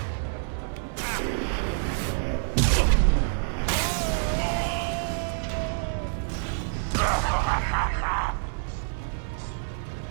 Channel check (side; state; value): left; silent; 60 dB below the other